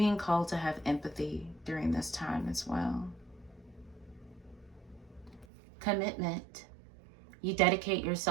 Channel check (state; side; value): drops out; left; at 5.5 s